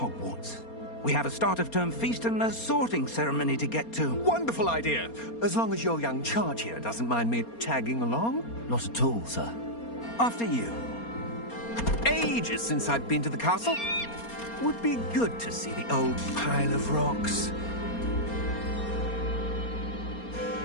We have a start-of-term feast and a sorting ceremony to get to. Wonderful idea! As long as your young charge here doesn't mind me tagging along. Not at all, sir. After you. Ages since I've been to the castle. Would be good to see the old pile of rocks.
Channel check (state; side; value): late; right; 4.3 ms